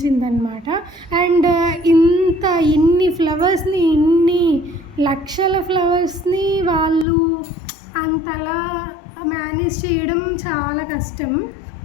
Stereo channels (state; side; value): drops out; right; at 7.1 s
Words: అనమాట. అండ్ ఇన్ని ఫ్లవర్స్ని, ఇన్ని లక్షల ఫ్లవర్స్ని వాళ్ళు అంతలా మేనేజ్ చేయడం చాలా కష్టం.